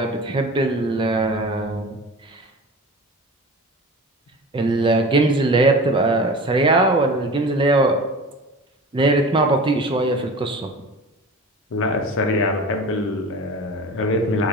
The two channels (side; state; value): both; normal; correlation 0.35